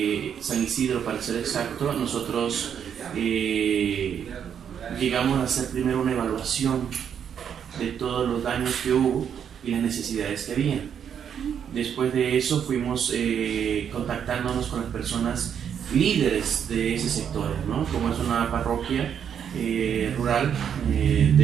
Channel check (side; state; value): left; quieter; 8.2 dB